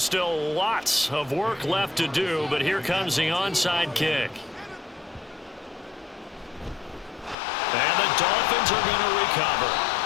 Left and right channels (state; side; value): drops out; right; at 7.4 s